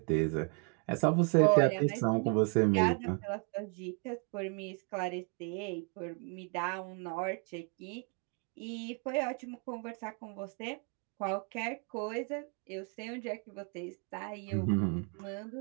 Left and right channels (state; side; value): quieter; left; 38.3 dB